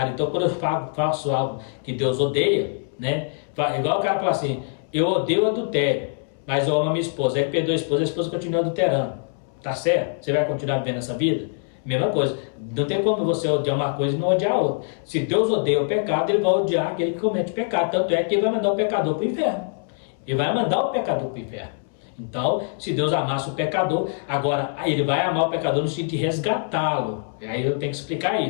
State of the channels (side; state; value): right; silent; 63 dB below the other